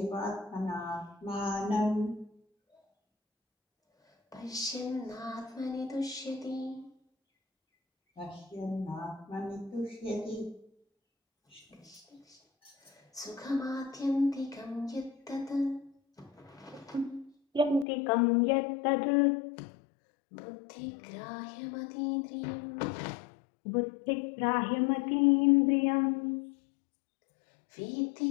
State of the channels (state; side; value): drops out; right; at 17.9 s